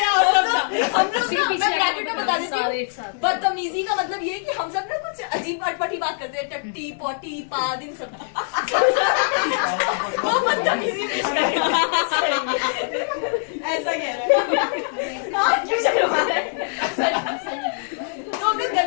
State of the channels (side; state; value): right; silent; 59 dB below the other